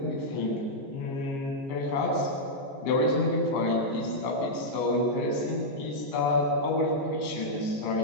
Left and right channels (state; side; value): late; right; 15 ms